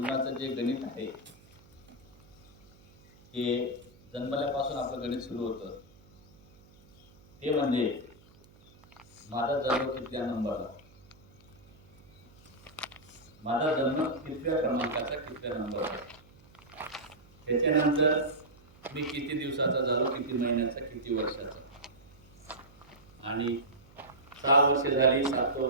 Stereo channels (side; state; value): right; noise; hum, 27 dB below the sound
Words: जे गणित आहे हे जन्मल्यापासून आपलं गणित सुरू होतं. ते म्हणजे माझा जन्म कितव्या नंबरला, माझा जन्म कितव्या क्रमांकाचा कितव्या नंबरला, त्याच्यानंतर मी किती दिवसाचा झालो, किती महिन्याचा, किती वर्षाचा, आणि 6 वर्ष झाली, 7वं